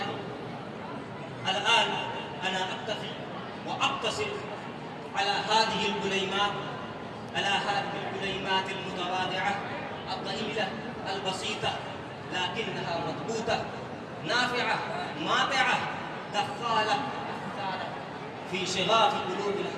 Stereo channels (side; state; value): both; identical; correlation 1.00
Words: الآن أنا أكتفي وأقتصر على هذه الكلمات المتواضعة الضئيلة البسيطة، لكنها مضبوطة نافعة ماتعة دخالة أثارة في شغاف قلوب